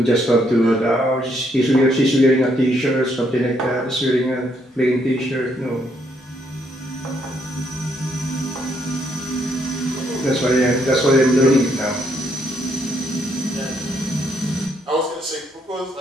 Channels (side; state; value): both; normal; correlation 0.73